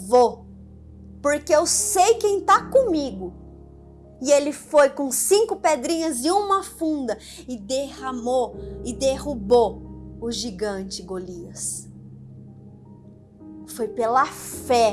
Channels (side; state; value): both; identical; correlation 1.00